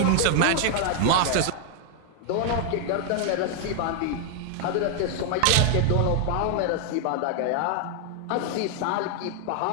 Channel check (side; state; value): both; different; correlation 0.00